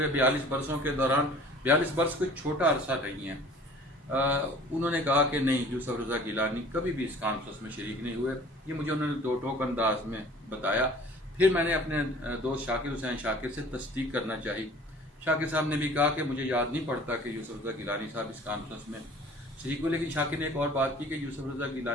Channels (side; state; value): both; normal; correlation 0.48